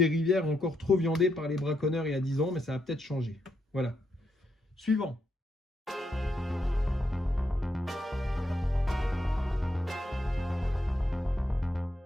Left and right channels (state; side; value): normal; both; correlation 0.80